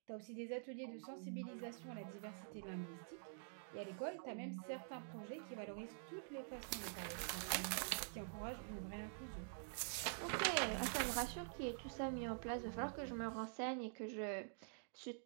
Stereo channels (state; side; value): silent; left; digital silence